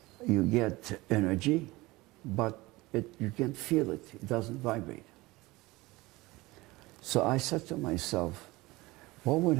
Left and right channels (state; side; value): quieter; left; 21.0 dB